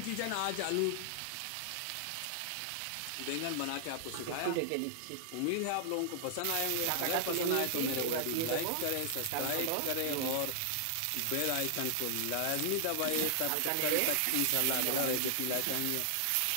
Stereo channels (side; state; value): both; different; correlation -0.01